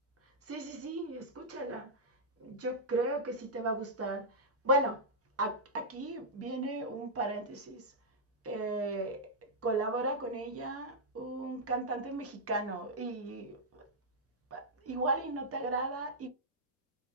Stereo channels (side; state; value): both; normal; correlation -0.09